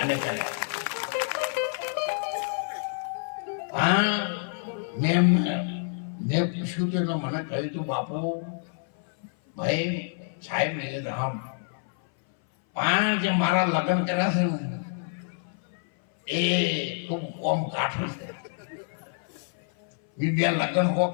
અને કર્યા. હા, મેં પૂછ્યું તો એટલે મને કહ્યું તું, બાપુ ભાઈ સાહેબ ને રામ, જે મારા લગ્ન કર્યા છે ને એ ખૂબ કોમ કાઠું છે. બીજા લગ્ન હો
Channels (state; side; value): silent; right; 58 dB below the other